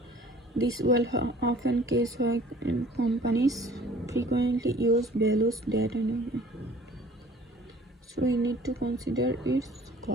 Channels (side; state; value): both; normal; correlation 0.51